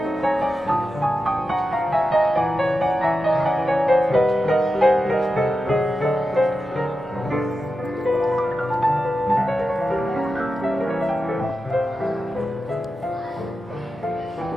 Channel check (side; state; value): both; normal; correlation 0.90